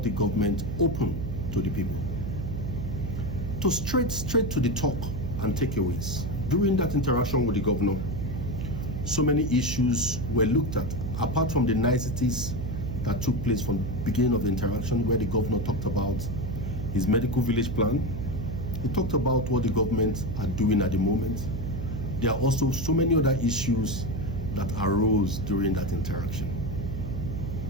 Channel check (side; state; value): right; noise; hum, 4 dB below the sound